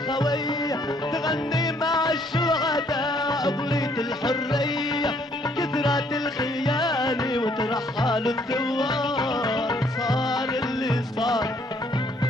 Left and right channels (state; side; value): normal; both; correlation 0.65